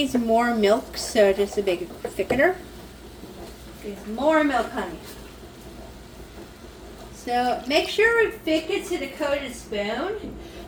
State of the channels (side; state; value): both; identical; correlation 1.00